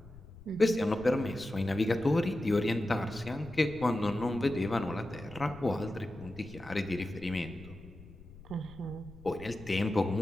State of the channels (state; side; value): noise; left; rumble, 18 dB below the sound